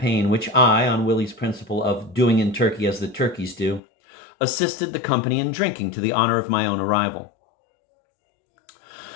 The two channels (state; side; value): drops out; right; at 3.8 s